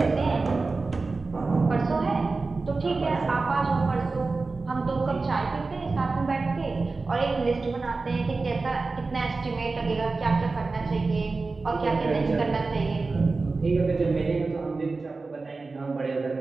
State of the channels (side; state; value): left; quieter; 3.8 dB